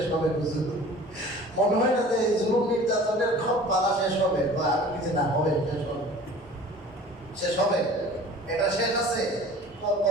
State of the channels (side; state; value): both; normal; correlation 0.44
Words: হবে হুজুর? মনে হয় না যে জুলুম নির্যাতনের সব পালা শেষ হবে, বা আর কিছু না হবে, শেষ হবে, শেষ হবে। এটা শেষ আছে,